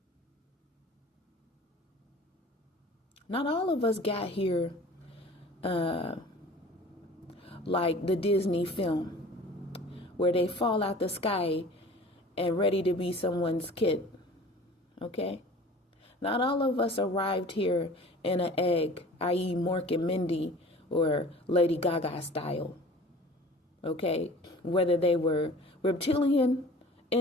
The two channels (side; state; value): both; normal; correlation 0.44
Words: Not all of us got here like the Disney film, where they fall out the sky and ready to be someone's kid. Okay? Not all of us arrived here in an egg, i.e. Mork and Mindy or Lady Gaga style. Okay? Whether they were reptilian